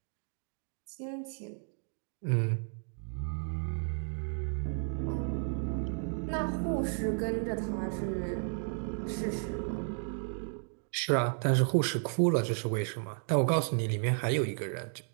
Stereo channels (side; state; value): left; silent; 56 dB below the other